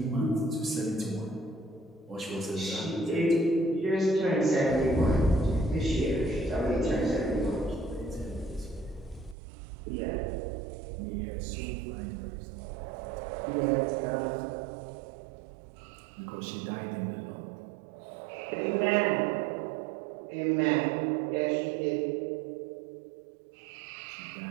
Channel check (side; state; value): left; drops out; at 9.3 s